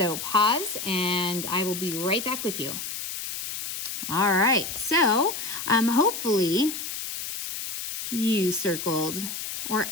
pause and I will be right back with you. All right, so hopefully you circled or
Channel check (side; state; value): left; noise; hiss, 6 dB below the sound